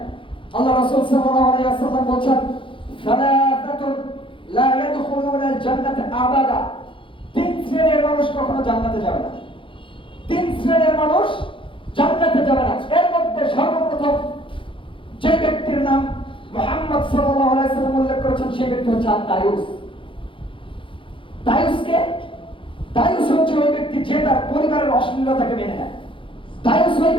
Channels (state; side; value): late; right; 0.25 ms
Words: আল্লাহ রাসূল সাল্লাল্লাহু আলাইহি ওয়াসাল্লাম বলেন, সালাতাতুন লা ইয়াদখুলুনা আল জান্নাতা আবাদা, তিন শ্রেণীর মানুষ কখনো জান্নাতে যাবে না। তিন শ্রেণীর মানুষ জান্নাতে যাবে না। এর মধ্যে সর্বপ্রথম যে ব্যক্তির নাম মুহাম্মদ সাল্লাল্লাহু আলাইহি ওয়াসাল্লাম উল্লেখ করেছেন, সেই ব্যক্তি হচ্ছে দায়ুস। দায়ুসকে, দায়ুস হচ্ছে ওই ব্যক্তি যে তার পরিবারের অশ্লীলতাকে মেনে নেয়। দায়ুস ওই